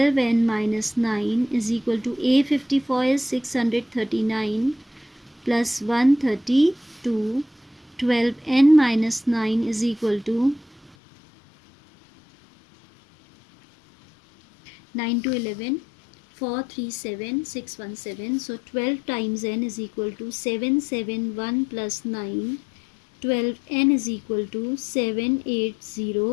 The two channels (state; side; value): drops out; right; at 11.0 s